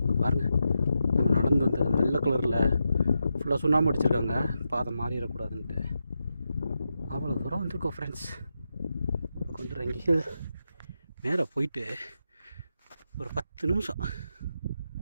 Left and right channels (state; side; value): inverted; both; correlation -0.87